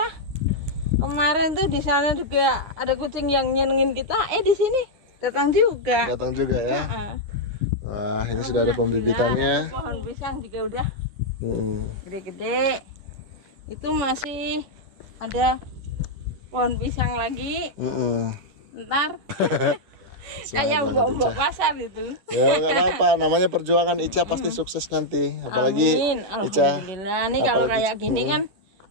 Kemarin tuh di sana juga ada kucing yang nyenengin kita. Di sini datang juga. Datang juga ya. Heeh. Wah, ini sudah ada pembibitannya. Pohon pisang juga udah gede-gede. Itu masih ada pohon pisang lagi. Ntar kayak mbok pasar itu. Ya nggak apa-apa, namanya perjuangan. Ica pasti sukses nanti. Apalagi Amin. Ica. Alhamdulillah. Nih kalau kayak gini kan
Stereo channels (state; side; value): late; left; 10 ms